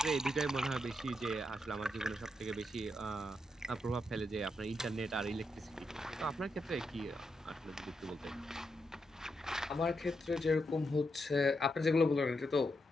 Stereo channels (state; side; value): normal; both; correlation 0.83